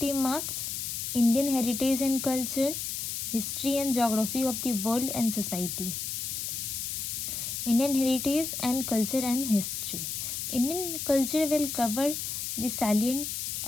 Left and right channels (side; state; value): left; noise; hiss, 4 dB below the sound